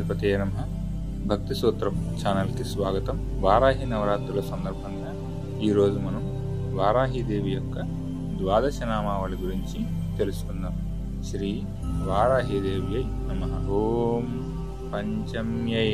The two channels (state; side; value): identical; both; correlation 1.00